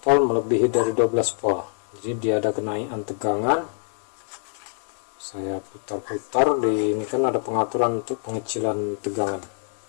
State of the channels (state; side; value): silent; right; digital silence